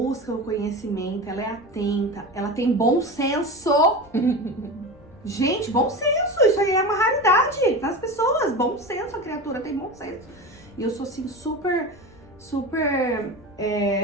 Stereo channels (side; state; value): left; noise; rumble, 26 dB below the sound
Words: o conhecimento, ela é atenta, ela tem bom senso. Gente, bom senso, isso aí é uma raridade nas pessoas. Bom senso, a criatura tem bom senso. E eu sou assim super